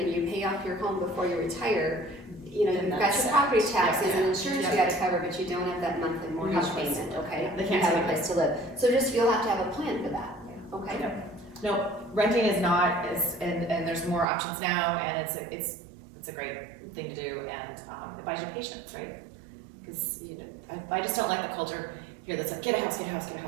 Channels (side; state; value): left; drops out; at 14.2 s